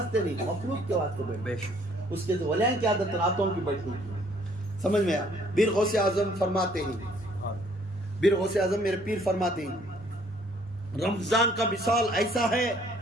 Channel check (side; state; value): both; normal; correlation 0.61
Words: نہیں، مخلوق کے واسطے بیٹھتے ہیں۔ اس کے تو ولیان کی عادت راتوں کی بیٹھنے کی، سمجھ میں آیا؟ پیر غوث اعظم فرماتے ہیں، پیر غوث اعظم میرے پیر فرماتے ہیں رمضان کا مثال ایسا ہے،